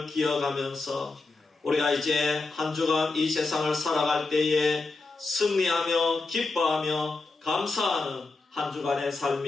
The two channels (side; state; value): right; quieter; 3.6 dB